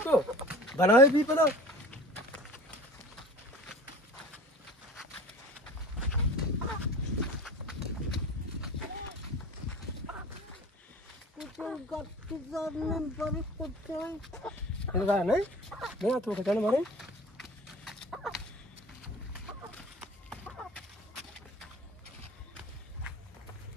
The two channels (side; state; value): both; normal; correlation 0.41